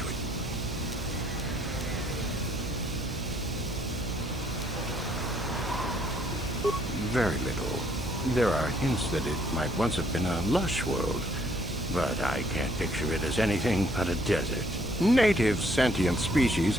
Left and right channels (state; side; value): noise; right; hum, 8 dB below the sound